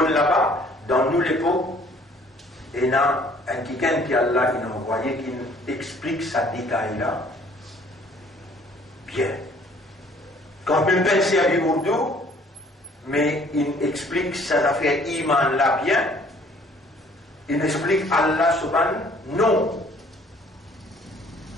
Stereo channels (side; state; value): both; normal; correlation 0.57